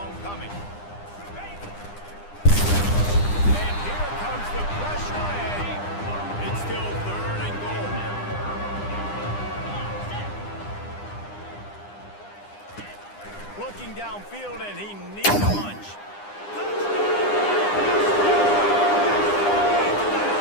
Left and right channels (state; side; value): late; right; 9.9 ms